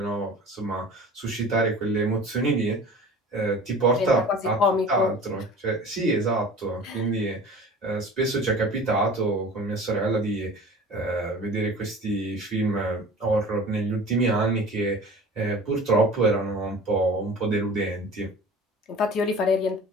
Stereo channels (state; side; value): normal; both; correlation 0.40